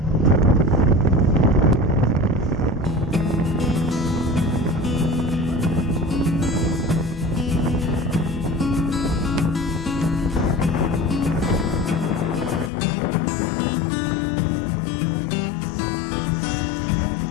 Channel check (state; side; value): drops out; right; at 12.7 s